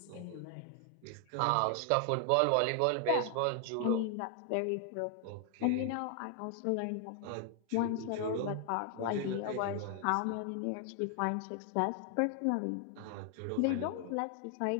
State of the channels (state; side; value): different; both; correlation 0.00